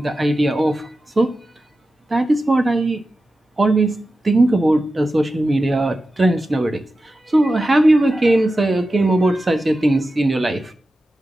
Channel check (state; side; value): normal; both; correlation 0.93